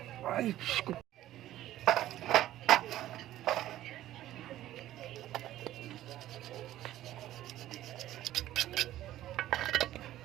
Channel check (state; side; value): quieter; left; 13.9 dB